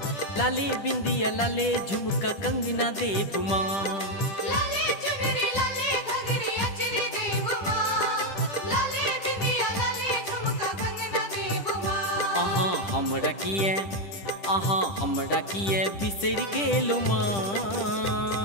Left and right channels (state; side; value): late; right; 10 ms